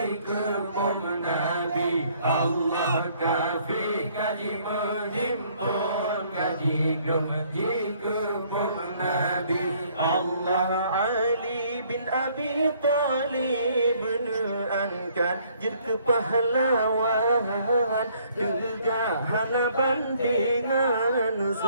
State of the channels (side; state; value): both; inverted; correlation -0.63